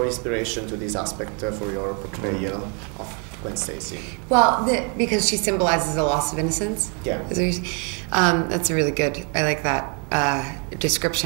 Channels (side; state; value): left; quieter; 36.9 dB